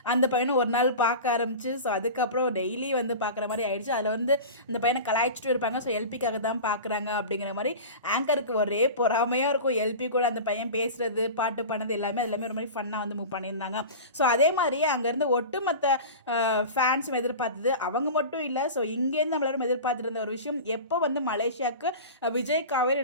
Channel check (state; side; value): inverted; both; correlation -0.31